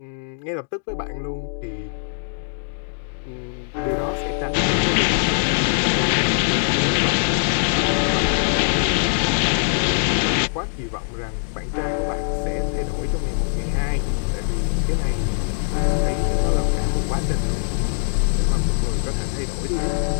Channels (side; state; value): right; silent; digital silence